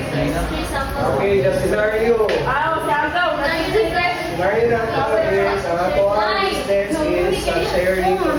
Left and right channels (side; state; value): both; identical; correlation 1.00